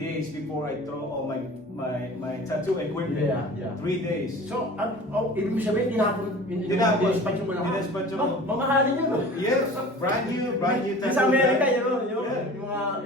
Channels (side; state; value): both; normal; correlation 0.41